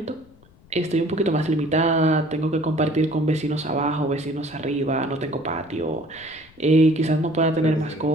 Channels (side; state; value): left; noise; rumble, 27 dB below the sound